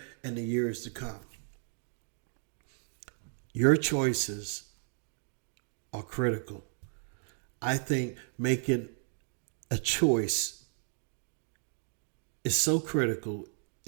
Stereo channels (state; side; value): silent; left; 55 dB below the other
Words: and the years to come? Your choices are critical. I think making a choice is so critical.